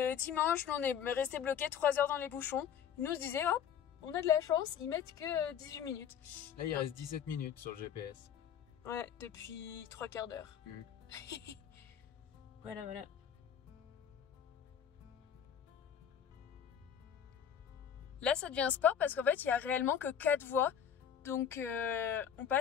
dimanche, on est resté bloqué 3 heures dans les bouchons. Ils nous disaient, hop, on a de la chance, ils mettent que 18 minutes. Là, il reste 17 minutes sur le GPS. Ouais, depuis 3/4 d'heure. Voilà. Là, ça devient sport parce qu'en fait, il n'y a réellement que 4 voies. Donc, on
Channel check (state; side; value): quieter; right; 8.6 dB